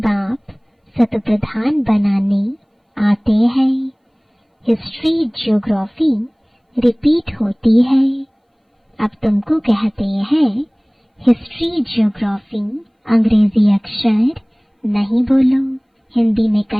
बाप सत प्रधान बनाने आते हैं। हिस्ट्री ज्योग्राफी रिपीट होती है। अब तुमको कहते हैं हिस्ट्री ज्योग्राफी अंग्रेजी अक्षर नहीं बोलो, हिंदी में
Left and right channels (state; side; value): identical; both; correlation 1.00